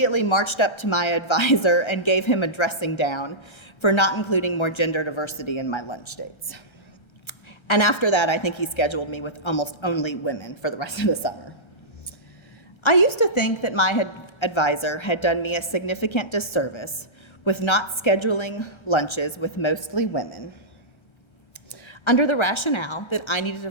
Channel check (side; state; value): right; late; 1.3 ms